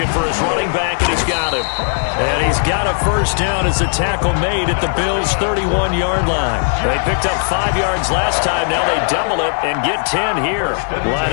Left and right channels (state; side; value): silent; right; digital silence